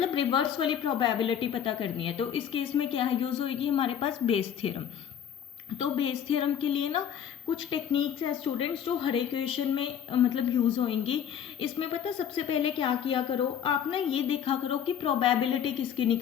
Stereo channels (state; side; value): quieter; right; 9.0 dB